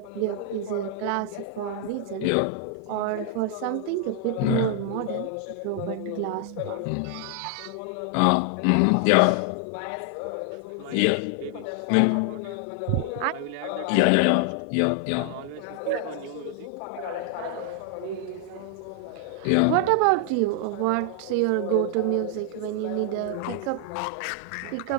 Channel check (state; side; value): different; both; correlation 0.00